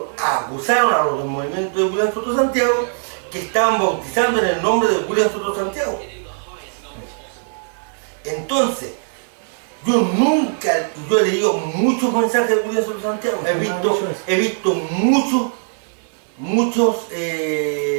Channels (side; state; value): left; silent; digital silence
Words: acusaron a los del movimiento de William Soto Santiago que estaban bautizando en el nombre de William Soto Santiago. Entonces, yo he leído muchos mensajes de William Soto Santiago, he visto muchos